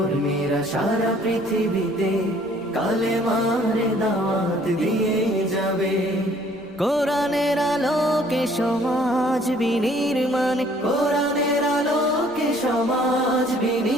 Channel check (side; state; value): right; noise; rumble, 28 dB below the sound